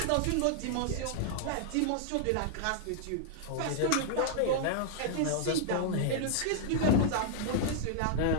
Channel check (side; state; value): both; different; correlation -0.01